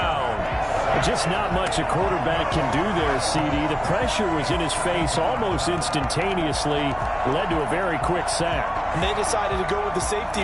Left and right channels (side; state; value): both; identical; correlation 1.00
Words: Just not much a quarterback can do there, CD. The pressure was in his face almost instantaneously, led to a very quick sack. And they decided to go with the safety